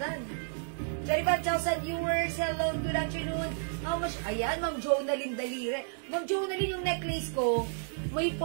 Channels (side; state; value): left; silent; digital silence